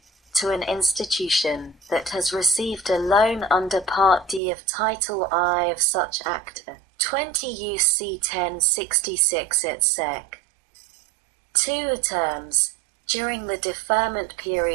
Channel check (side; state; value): left; drops out; at 4.4 s